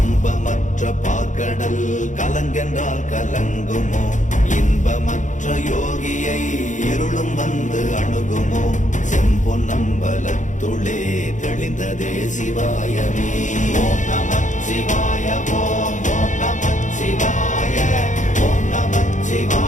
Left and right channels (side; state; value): right; late; 0.36 ms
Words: பார்க்கடல் கலங்கென்றால் கலங்குமோ? இன்பமற்ற யோகியை இருளும் வந்து அணுகுமோ? செம்பொன்னம்பலத்துளே தெளிந்ததே சிவாயமே. ஓம் நமச்சிவாய ஓம் ஓம் நமச்சிவாய ஓம்